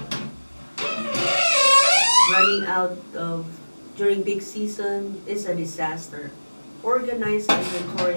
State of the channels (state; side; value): inverted; both; correlation -1.00